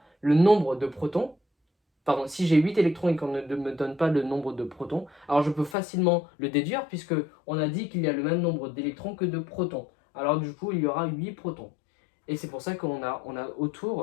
le nombre de protons, pardon, si j'ai 8 électrons et qu'on ne me donne pas le nombre de protons, alors je peux facilement le déduire, puisque on a dit qu'il y a le même nombre d'électrons que de protons. Alors du coup, il y aura 8 protons. Et c'est pour ça qu'on a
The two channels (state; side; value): drops out; right; at 5.8 s